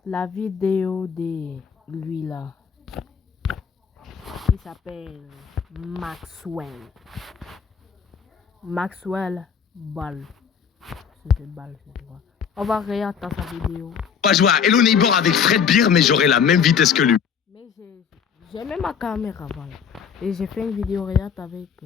la vidéo de lui là. Il s'appelle Maxwell. Maxwell Ball. C'était Ball, c'est quoi. On va regarder sa vidéo. On va jouer à Hello Neighbor avec Fred Beer, mais j'aurai la même vitesse que lui. Mais j'ai même ma caméra, voilà. Et j'ai fait une vidéo regarde avec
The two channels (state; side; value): quieter; right; 7.1 dB